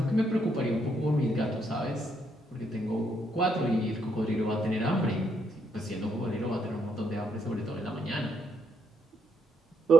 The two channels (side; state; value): both; normal; correlation 0.75